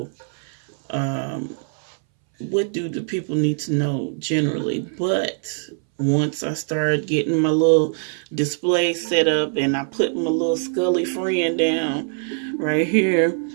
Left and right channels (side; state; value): left; silent; 63 dB below the other